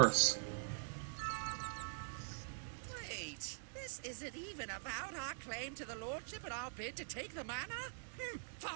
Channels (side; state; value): left; silent; digital silence